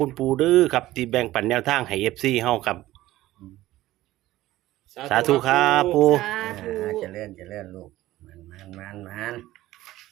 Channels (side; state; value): left; quieter; 16.0 dB